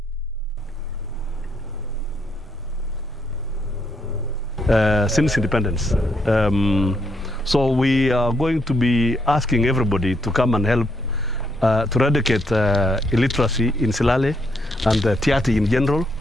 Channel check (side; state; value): both; normal; correlation 0.74